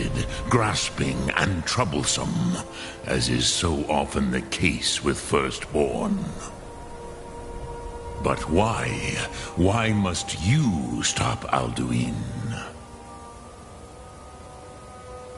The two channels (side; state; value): both; identical; correlation 1.00